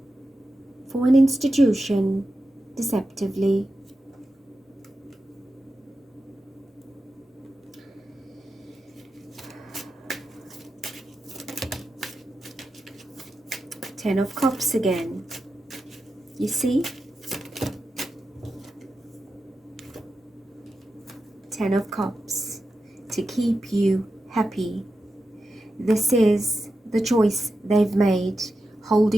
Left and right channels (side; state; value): both; normal; correlation 0.90